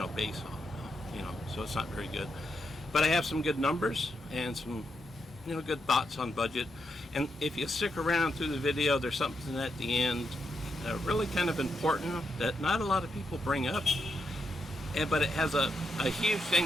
base on, so it's not very good. But I have some good numbers and some good thoughts on budget. And if you stick around through the video, there's something at the end really kind of important that not a lot of people bring up, but it has a huge thing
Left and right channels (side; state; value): both; normal; correlation 0.82